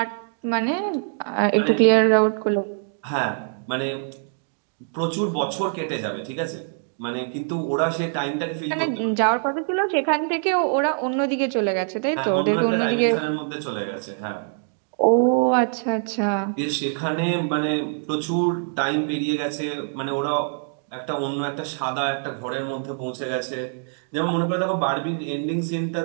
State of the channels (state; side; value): silent; left; digital silence